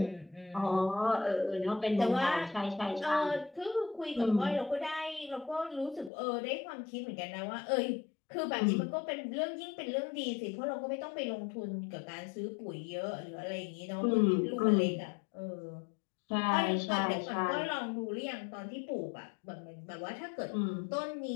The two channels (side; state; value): right; drops out; at 6.1 s